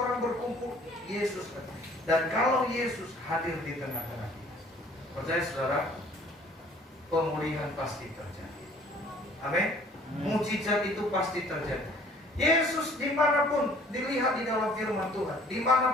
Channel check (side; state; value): both; normal; correlation 0.55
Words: berkumpul, Yesus. Dan kalau Yesus hadir di tengah-tengah kita, percaya saudara, pemulihan pasti terjadi. Amin. Mujizat itu pasti terjadi. Yesus dimanapun dilihat di dalam firman Tuhan,